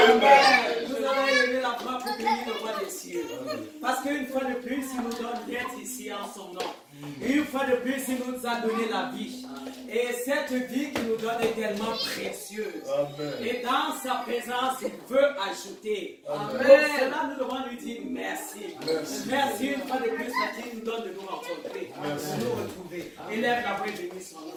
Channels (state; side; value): identical; both; correlation 1.00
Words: Vous avez levé la voix pour bénir le roi des cieux. Parce qu'une fois de plus, il nous donne d'être ici en son nom. Et une fois de plus, il nous a donné la vie. Et cette vie qu'il nous donne est tellement précieuse. Amen. Et dans sa présence, il veut ajouter. Amen. Pour cela, nous devons lui dire merci. Merci une fois de plus parce qu'il nous donne de nous rencontrer, de nous retrouver. Élève la voix et bénis son